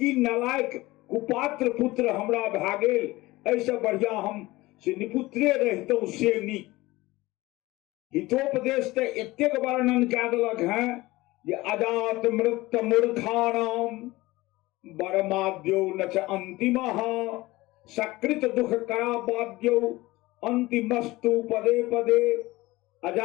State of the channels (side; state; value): right; quieter; 19.7 dB